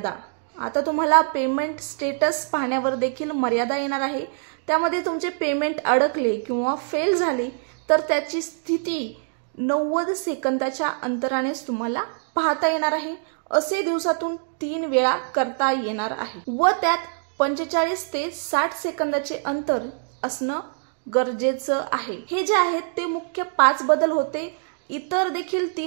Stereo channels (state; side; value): silent; left; digital silence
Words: आता तुम्हाला पेमेंट स्टेटस पाहण्यावर देखील मर्यादा येणार आहे। त्यामध्ये तुमचे पेमेंट अडकले किंवा फेल झाले तर त्याची स्थिती 90 सेकंदाच्या अंतरानेच तुम्हाला पाहता येणार आहे। असे दिवसातून 3 वेळा करता येणार आहे व त्यात 45 ते 60 सेकंदाचे अंतर असणं गरजेचं आहे। हे जे आहेत ते मुख्य 5 बदल होते। इतर देखील